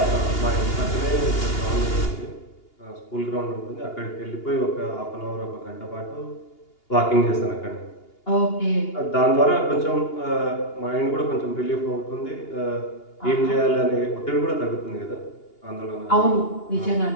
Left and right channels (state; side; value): late; right; 2.8 ms